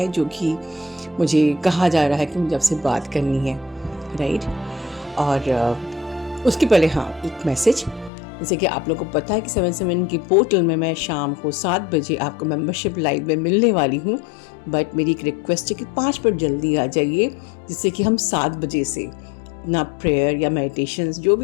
जो कि मुझे कहा जा रहा है कि मुझे आपसे बात करनी है, राइट। और उसके पहले हाँ, एक मैसेज। जैसे कि आप लोगों को पता है कि 7 की पोर्टल में मैं शाम को 7 बजे आपको मेंबरशिप लाइव में मिलने वाली हूँ। बट मेरी एक रिक्वेस्ट है कि 5 मिनट जल्दी आ जाइए, जिससे कि हम 7 बजे से ना प्रेयर या मेडिटेशंस जो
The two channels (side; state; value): right; drops out; at 8.1 s